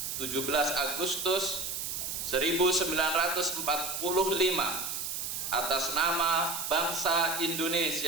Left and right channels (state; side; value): noise; right; hiss, 4 dB below the sound